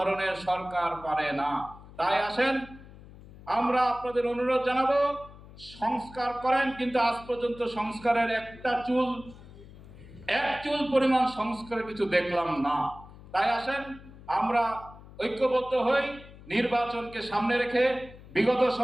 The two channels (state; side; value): noise; left; hum, 19 dB below the sound